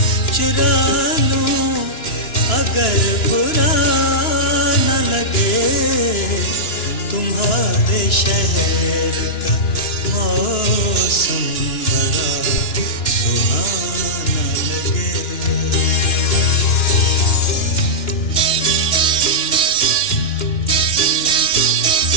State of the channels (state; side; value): late; right; 2.9 ms